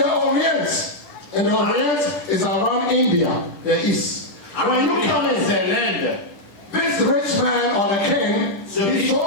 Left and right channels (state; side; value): late; right; 10 ms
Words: Orient is around India, the east. When you come in, c'est l'Inde. this rich man or the king is